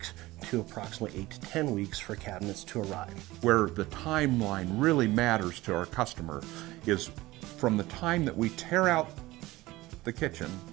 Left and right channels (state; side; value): quieter; left; 18.8 dB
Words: to approximately 8 to 10 weeks for cabinets to arrive. Where the timeline really matters to our customer is from the time that we tear out the kitchen,